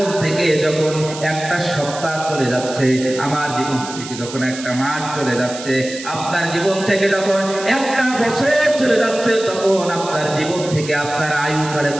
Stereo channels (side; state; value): right; noise; hiss, 12 dB below the sound